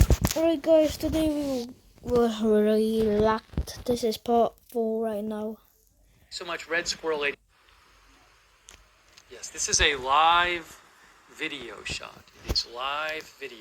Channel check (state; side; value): identical; both; correlation 1.00